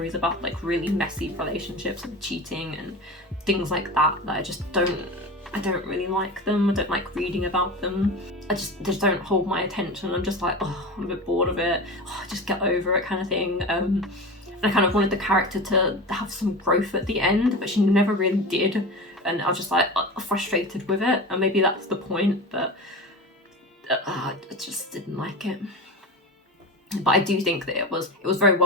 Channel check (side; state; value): both; normal; correlation 0.29